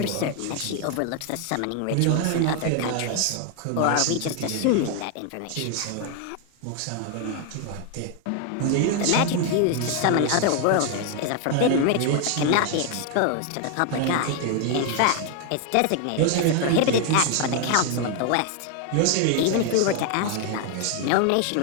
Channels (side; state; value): both; different; correlation 0.00